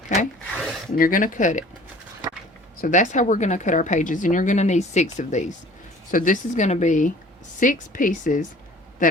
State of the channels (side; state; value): both; normal; correlation 0.49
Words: Okay, and you're going to cut it. So that's how we're going to cut our pages, and you're going to need 6 of these. So this is going to be 6 pieces